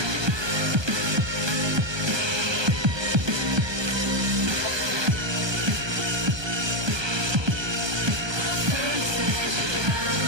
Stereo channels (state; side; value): late; left; 1.2 ms